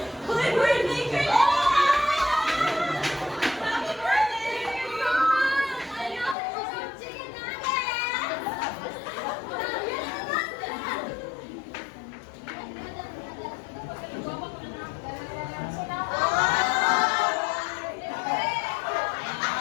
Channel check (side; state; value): right; drops out; at 6.4 s